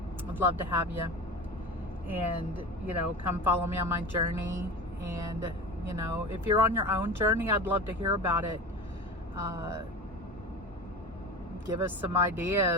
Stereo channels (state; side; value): normal; both; correlation 0.31